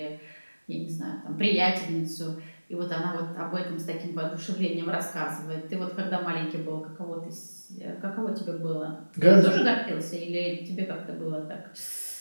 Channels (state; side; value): inverted; both; correlation -1.00